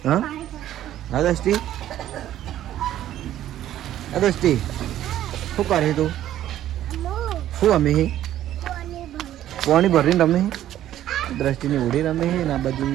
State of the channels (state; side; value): quieter; left; 12.4 dB